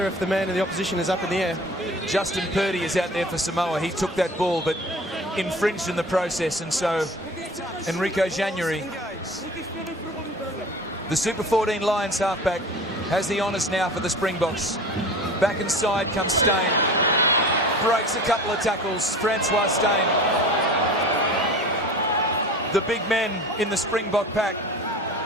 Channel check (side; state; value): both; normal; correlation 0.39